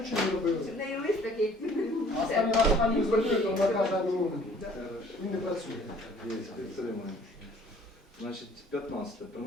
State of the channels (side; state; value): both; normal; correlation 0.55